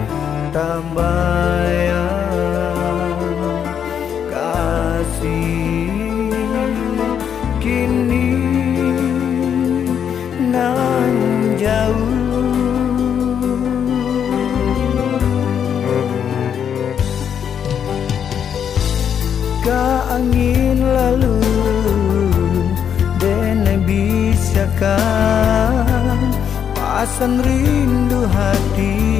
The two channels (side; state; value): right; quieter; 8.3 dB